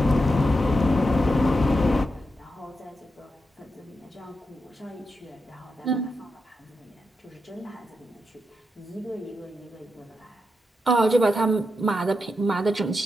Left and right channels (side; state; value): both; normal; correlation 0.86